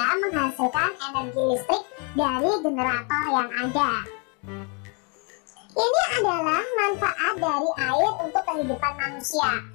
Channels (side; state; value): right; quieter; 35.4 dB